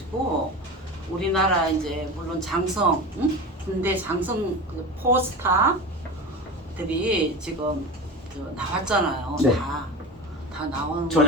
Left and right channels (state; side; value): normal; both; correlation 0.28